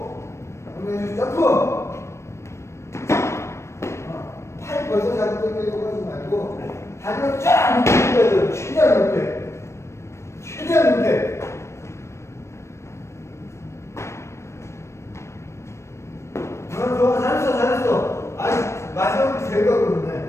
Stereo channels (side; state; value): right; late; 0.13 ms